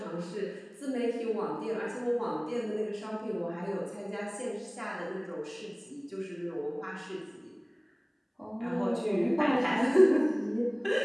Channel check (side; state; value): both; identical; correlation 1.00